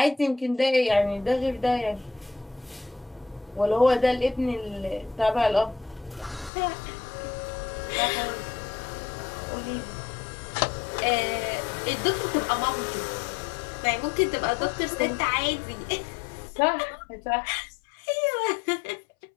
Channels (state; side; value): drops out; right; at 6.5 s